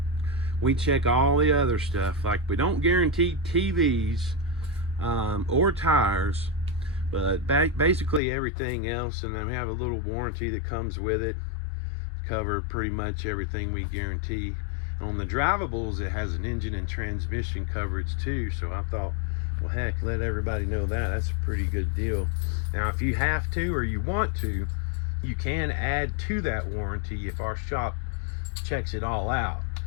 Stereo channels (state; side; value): drops out; right; at 8.2 s